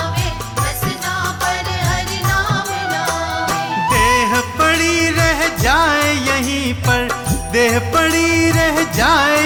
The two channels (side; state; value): both; identical; correlation 1.00